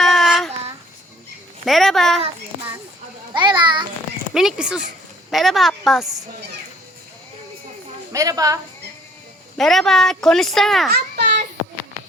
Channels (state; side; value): normal; both; correlation 0.58